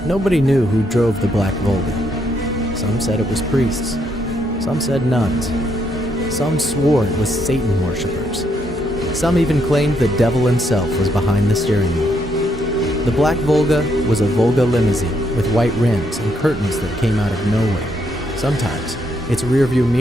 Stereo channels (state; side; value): normal; both; correlation 0.75